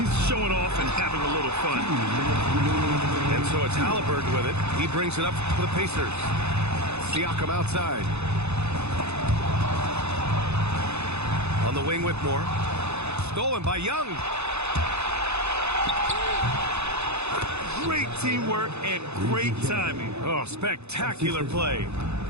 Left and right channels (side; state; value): left; late; 0.81 ms